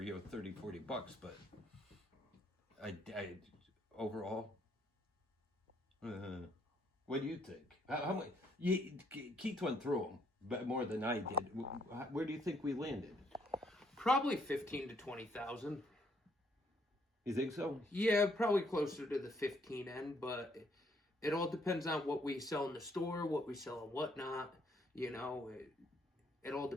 $30-40, but I overall. What do you think? How much? Keith went through them, but more than I did. Where do you think we landed? Probably 15 to 20,000. You think so? Yeah, probably closer to the 15 end, but it all depends on what we sell in the store, what we sell and whatnot. It all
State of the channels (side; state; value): both; normal; correlation 0.69